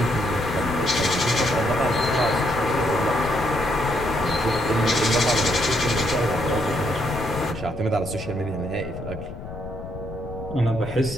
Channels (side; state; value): left; noise; rumble, 11 dB below the sound